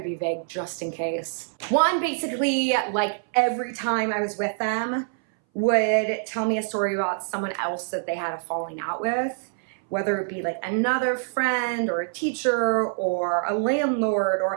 be vague just in case. One, basically, like every time I was with them, would tell me a story about someone else that they had a falling out with, whether it be like another friend or a teacher or a landlord,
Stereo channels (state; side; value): silent; left; 60 dB below the other